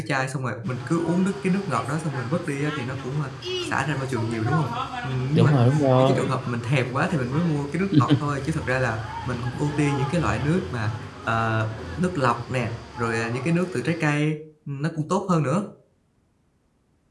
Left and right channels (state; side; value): identical; both; correlation 1.00